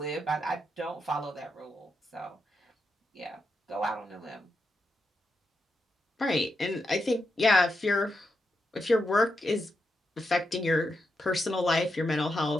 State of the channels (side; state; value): both; normal; correlation 0.85